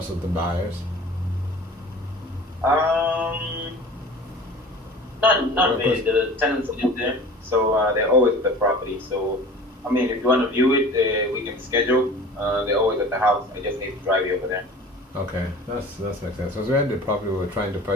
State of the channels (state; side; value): normal; both; correlation 0.41